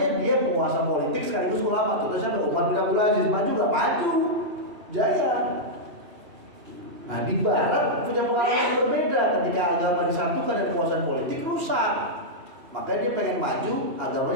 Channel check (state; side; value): late; left; 2.8 ms